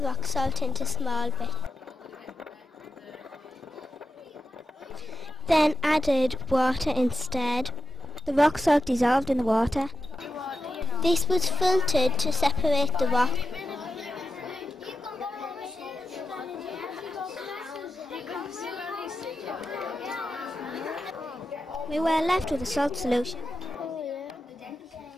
rock salt into small bits. Then added water instead. The rock salt dissolved in the water. This was filtered to separate the rock. We were left with a salt solution.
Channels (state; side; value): normal; both; correlation 0.89